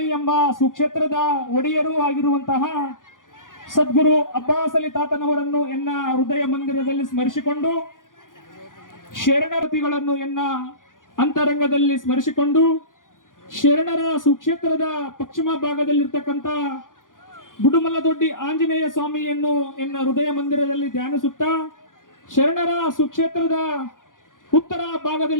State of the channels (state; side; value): late; right; 0.89 ms